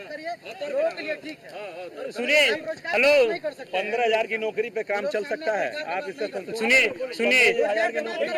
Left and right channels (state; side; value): identical; both; correlation 1.00